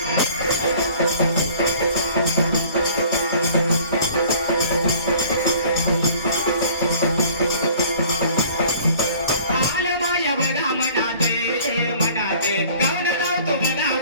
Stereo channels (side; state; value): both; inverted; correlation -0.52